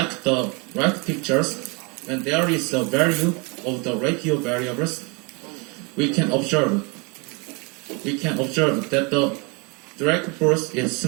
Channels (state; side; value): quieter; left; 30.8 dB